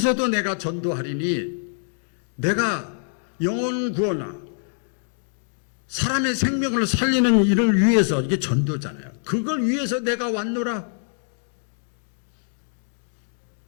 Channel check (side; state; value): right; silent; digital silence